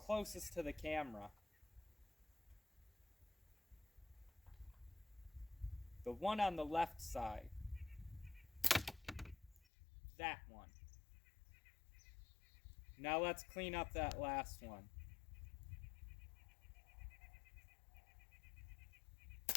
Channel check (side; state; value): right; drops out; at 9.7 s